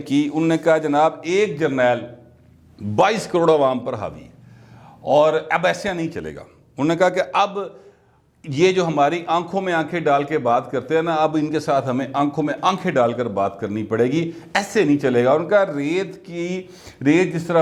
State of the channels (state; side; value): identical; both; correlation 1.00